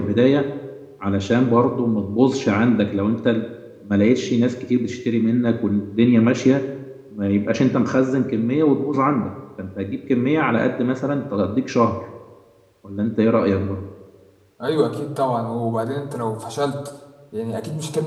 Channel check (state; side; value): identical; both; correlation 1.00